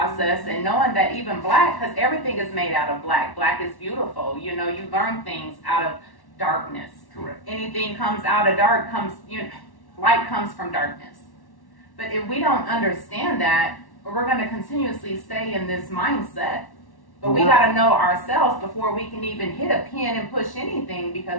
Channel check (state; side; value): late; right; 1.1 ms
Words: and knowing that even black, because everything is made out of black. Black is beautiful. You know, you learn things out of darkness. Correct. Anything comes out of dark light comes from darkness. But if we don't understand that, we're going to continuously stay in this mindset. But we got to know ourselves before we can even hit a pen and push anything,